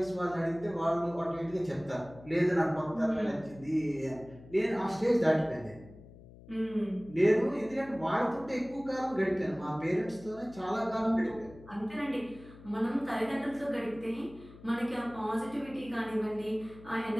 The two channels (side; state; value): left; noise; hum, 19 dB below the sound